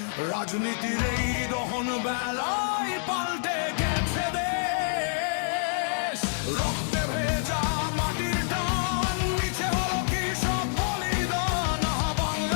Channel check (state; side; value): silent; right; digital silence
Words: রাজনীতির এই দহন বেলায় পাল্টে গেছে দেশ। রক্তে ভেজা মাটির টান, নিচে হলো কি সব বলিদান। আহা